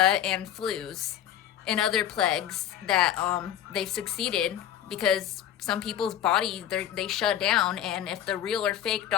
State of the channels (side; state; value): right; quieter; 10.7 dB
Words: and flus and other plagues that they've succeeded because some people's body, they shut down. And if the real or fake